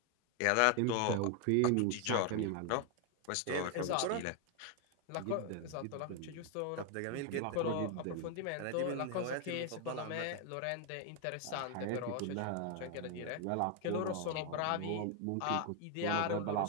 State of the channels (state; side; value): different; both; correlation 0.01